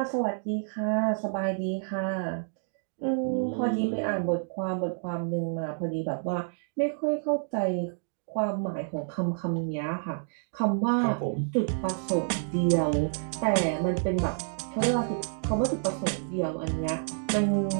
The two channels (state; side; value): silent; left; digital silence